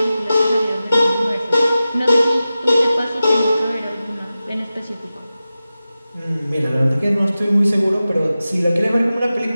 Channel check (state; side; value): inverted; both; correlation -0.94